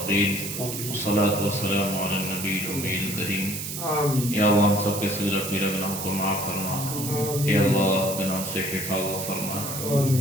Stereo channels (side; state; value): right; noise; hiss, 6 dB below the sound